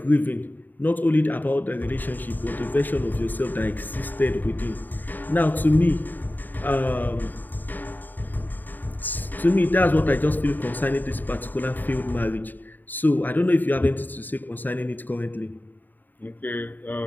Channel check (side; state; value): right; late; 0.089 ms